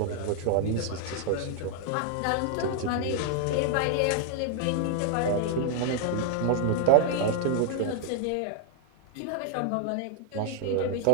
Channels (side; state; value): both; different; correlation 0.00